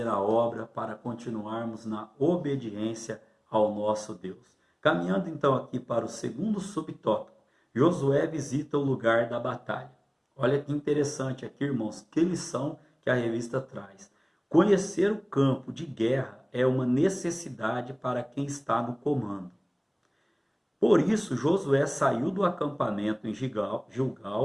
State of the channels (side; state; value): both; identical; correlation 1.00